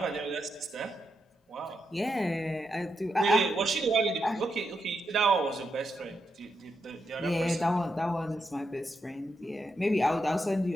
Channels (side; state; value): both; normal; correlation 0.84